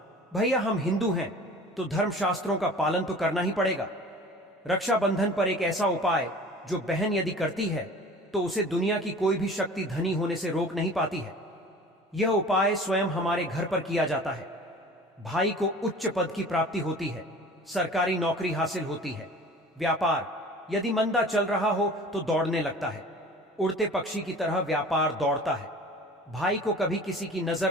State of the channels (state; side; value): normal; both; correlation 0.43